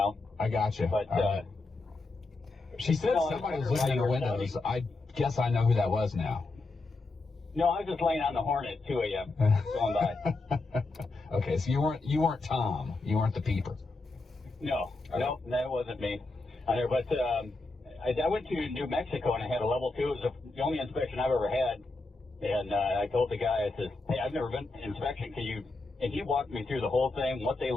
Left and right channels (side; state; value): right; quieter; 3.4 dB